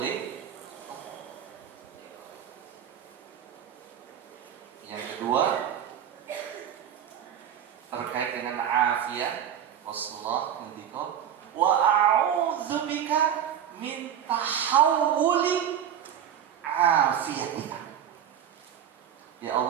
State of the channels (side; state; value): left; quieter; 9.4 dB